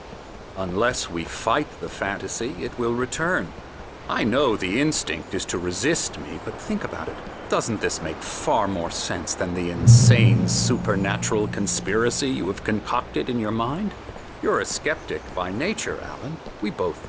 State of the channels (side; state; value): both; identical; correlation 1.00